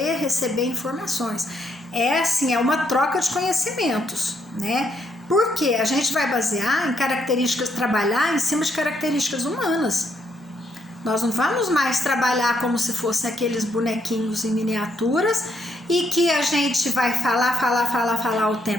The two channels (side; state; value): both; normal; correlation 0.74